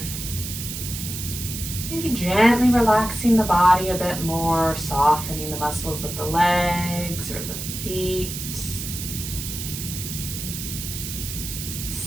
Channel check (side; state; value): right; noise; hiss, 7 dB below the sound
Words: Maybe gently relaxing the body a bit more, softening the muscles of the legs or the feet.